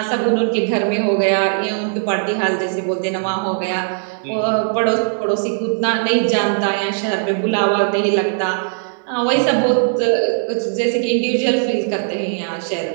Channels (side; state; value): left; silent; digital silence